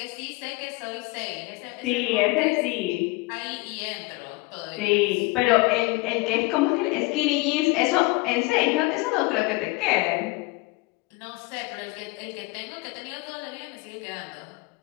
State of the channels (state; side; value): quieter; right; 24.0 dB